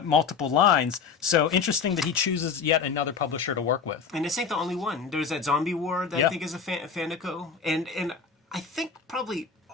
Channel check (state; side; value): quieter; right; 5.8 dB